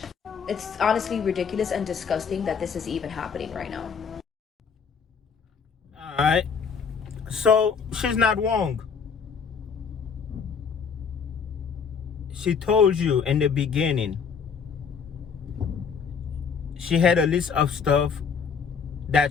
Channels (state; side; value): quieter; right; 6.2 dB